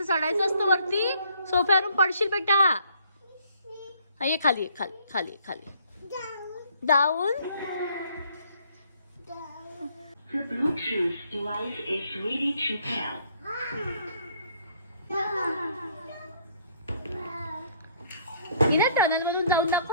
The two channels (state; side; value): inverted; both; correlation -0.64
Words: चढायचं असतं वरती. सोफ्यावरून पडशील बेटा. हा ये खाली. खाली खाली खाली. Down. The Bluetooth device is ready to pair. इना टनल मधून जाऊन